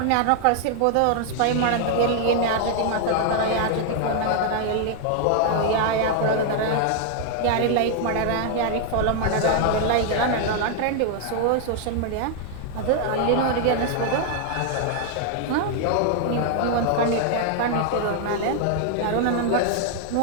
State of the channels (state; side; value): different; both; correlation 0.00